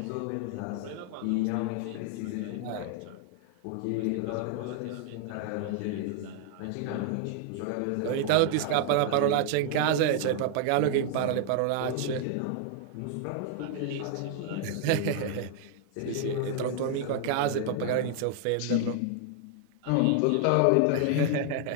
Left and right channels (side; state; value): both; different; correlation 0.00